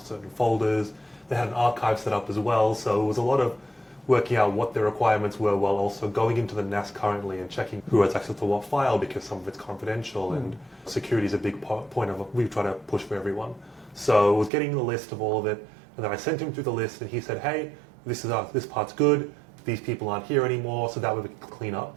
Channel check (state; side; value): drops out; left; at 14.5 s